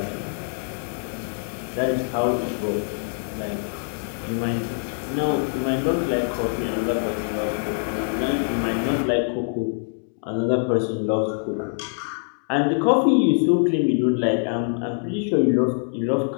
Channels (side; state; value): right; silent; 62 dB below the other